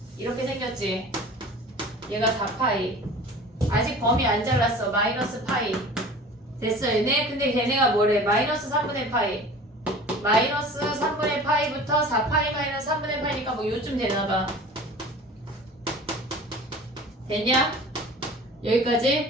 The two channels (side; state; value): both; normal; correlation 0.41